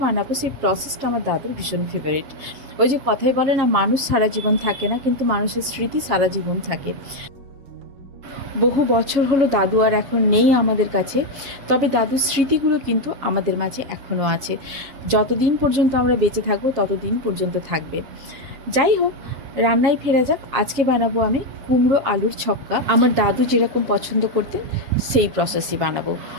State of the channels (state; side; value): late; left; 7.3 ms